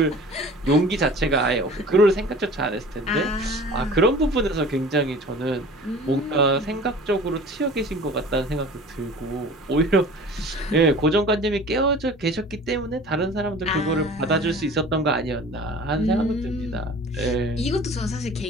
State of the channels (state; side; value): normal; both; correlation 0.42